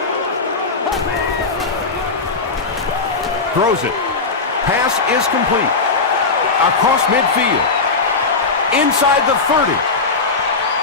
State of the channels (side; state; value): right; quieter; 4.2 dB